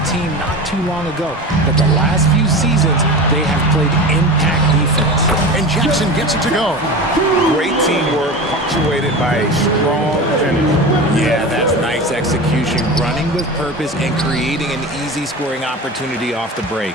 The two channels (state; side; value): normal; both; correlation 0.29